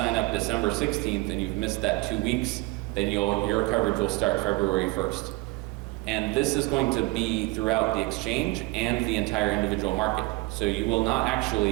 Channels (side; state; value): left; quieter; 21.9 dB